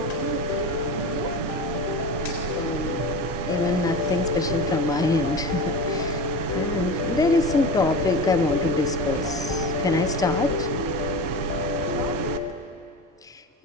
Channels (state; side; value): normal; both; correlation 0.28